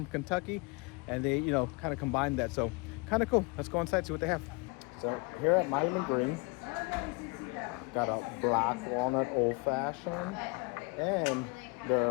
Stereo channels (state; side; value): quieter; right; 29.0 dB